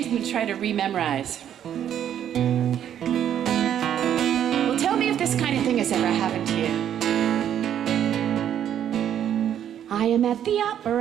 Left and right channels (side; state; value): left; quieter; 10.0 dB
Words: than to try to rememorize. Well, tell me if this kind of thing has ever happened to you. I am at the